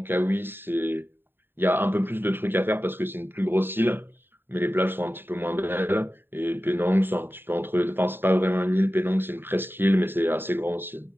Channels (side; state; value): left; late; 0.10 ms